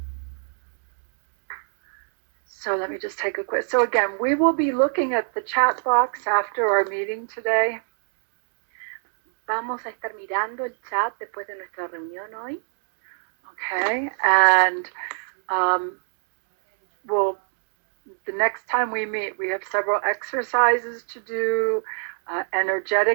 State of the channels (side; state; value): left; silent; digital silence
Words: So let me just take a quick. So again, we will be looking at the chat box after our meeting today. Vamos a estar mirando el chat después de nuestra reunión hoy. Okay. And the next time we meet, we have several exercises to do